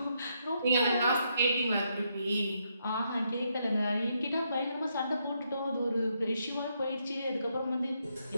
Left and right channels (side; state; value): both; inverted; correlation -0.78